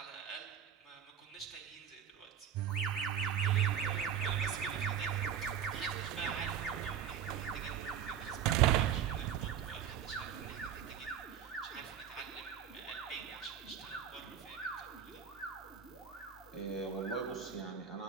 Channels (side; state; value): left; quieter; 8.5 dB